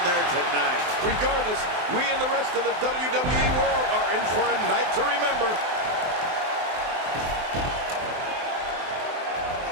there tonight. Regardless, we and the rest of the WWE world are in for a night to remember.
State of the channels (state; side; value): late; left; 23 ms